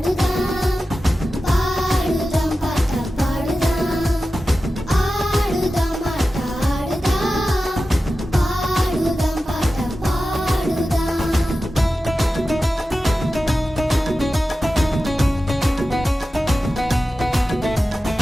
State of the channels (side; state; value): both; normal; correlation 0.93